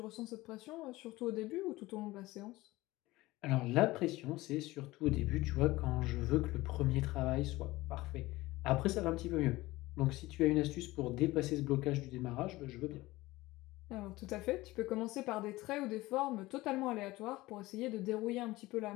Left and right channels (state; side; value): quieter; right; 19.2 dB